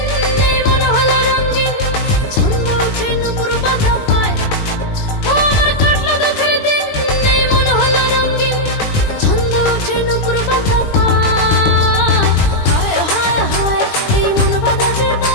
এই মন হলো রঙিন ছন্দ ওঠে নুপুর বাধা পায় ও আমার কাটলো দুঃখের দিন এই মন হলো রঙিন ছন্দ ওঠে নুপুর বাধা পায় হায় হায় হায় এই মন বাধা যে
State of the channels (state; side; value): late; right; 20 ms